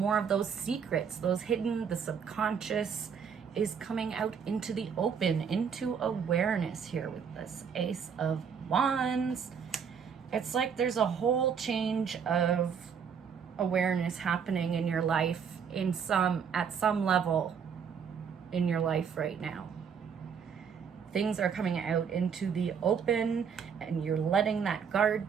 of those secrets, those hidden, the subconscious is coming out into the open, into awareness here with this Ace of Wands. It's like there's a whole change of awareness happening in your life at some level in your life right now. Things are coming out into the open and you're letting that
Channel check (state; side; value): quieter; left; 6.9 dB